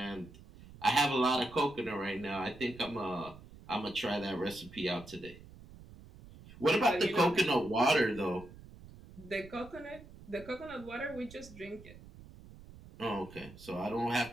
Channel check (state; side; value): noise; right; rumble, 19 dB below the sound